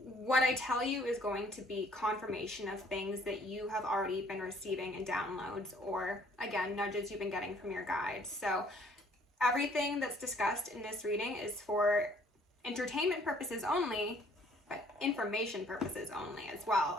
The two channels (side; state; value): both; normal; correlation 0.60